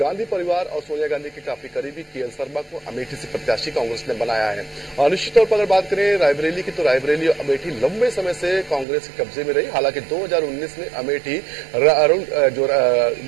परिवार और सोनिया गांधी के काफी करीबी केएल शर्मा को अमेठी से प्रत्याशी कांग्रेस ने बनाया है। और निश्चित तौर पर अगर बात करें रायबरेली की, तो रायबरेली और अमेठी लंबे समय से कांग्रेस के कब्जे में रही। हालांकि 2019 में अमेठी जो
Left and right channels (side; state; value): left; drops out; at 8.8 s